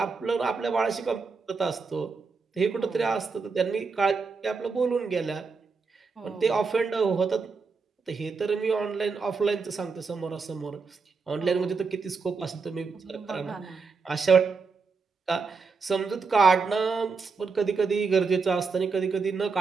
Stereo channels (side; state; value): left; quieter; 4.8 dB